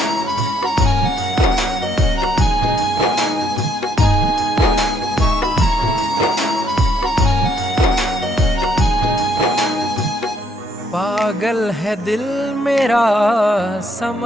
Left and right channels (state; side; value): normal; both; correlation 0.70